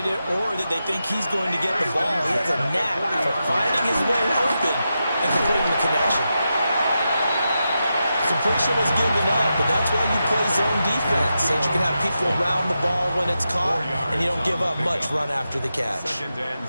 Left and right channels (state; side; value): inverted; both; correlation -0.88